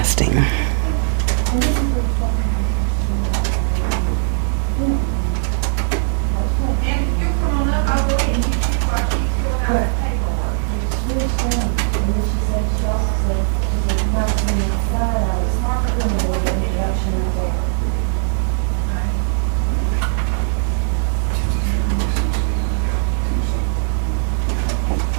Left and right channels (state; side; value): silent; left; digital silence